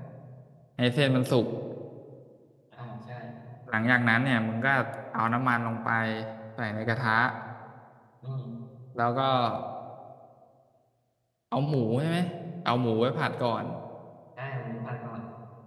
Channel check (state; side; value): identical; both; correlation 1.00